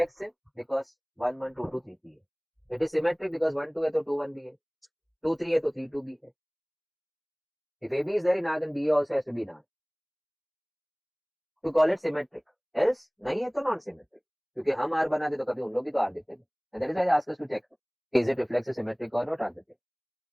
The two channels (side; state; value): both; identical; correlation 1.00